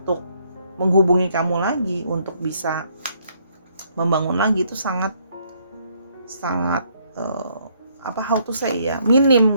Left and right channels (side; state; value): both; inverted; correlation -0.69